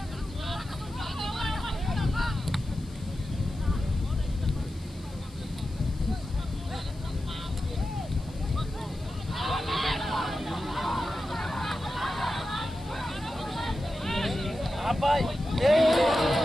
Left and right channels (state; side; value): noise; left; hiss, 24 dB below the sound